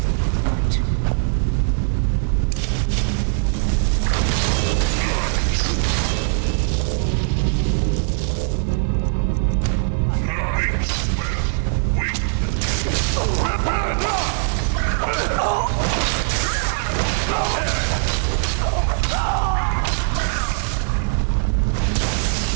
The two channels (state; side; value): silent; left; digital silence